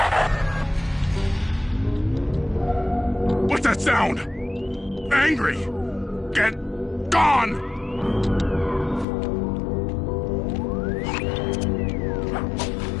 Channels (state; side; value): drops out; right; at 9.1 s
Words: What's that sound? Angry! Get gone!